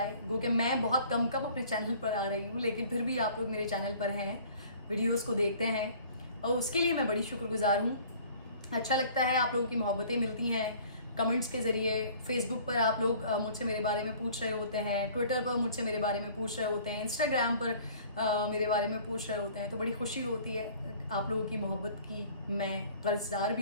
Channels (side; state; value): both; inverted; correlation -0.51